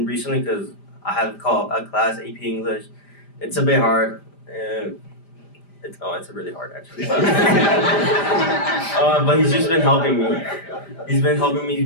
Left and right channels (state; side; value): late; right; 5.0 ms